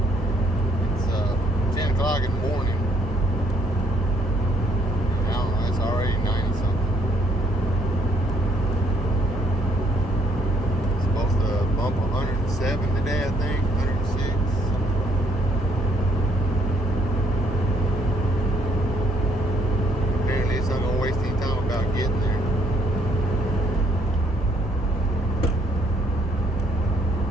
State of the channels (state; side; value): normal; both; correlation 0.67